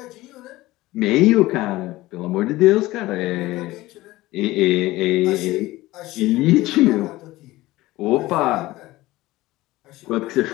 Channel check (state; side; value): quieter; right; 18.2 dB